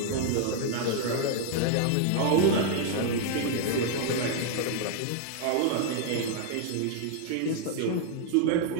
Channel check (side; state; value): both; different; correlation 0.00